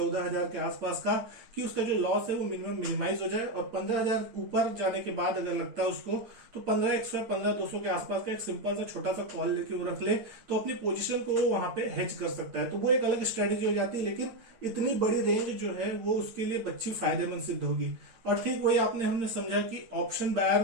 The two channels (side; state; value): left; late; 8.9 ms